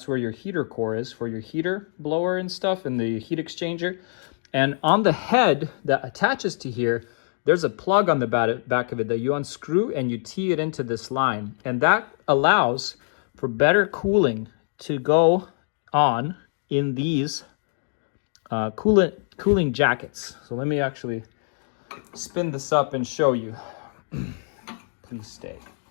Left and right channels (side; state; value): right; silent; digital silence